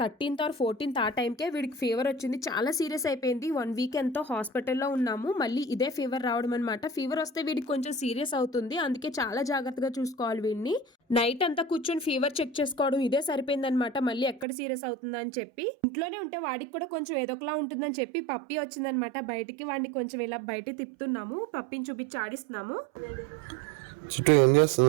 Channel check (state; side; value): drops out; left; at 14.5 s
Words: or 14th ఆ టైంకే వీడికి ఫీవర్ వచ్చింది. చాలా సీరియస్ అయిపోయింది. 1 week ఎంతో హాస్పిటల్లో ఉన్నాము. మళ్ళీ ఇదే ఫీవర్ రావడం అనమాట. ఫీవర్ వస్తే వీడికి కొంచెం సీరియస్ అవుతుంది, అందుకే చాలా జాగ్రత్తగా చూసుకోవాలి వీడిని. నైట్ అంతా కూర్చొని ఫీవర్ చెక్ చేసుకోవడం ఇదే సరిపోయిందనమాట. మళ్ళీ ఎక్కడ సీరియస్ అవుతుందా అని చెప్పి ఇంట్లోనే ఉంటే వాడికి కూడా కొంచెం ఏదోకలా ఉంటుందని చెప్పి పప్పి వచ్చిందనమాట బయటికి. వాడిని కొంచెం ఇలా బయట తిప్పుతున్నాము, పప్పిని చూపించి ఆడిస్తున్నాము. చుట్టూ ఏం